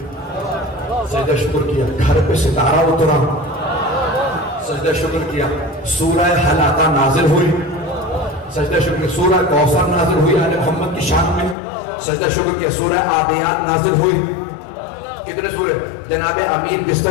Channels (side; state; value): right; drops out; at 11.6 s